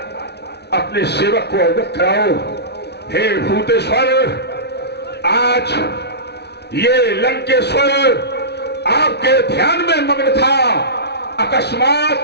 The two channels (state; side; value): late; right; 0.49 ms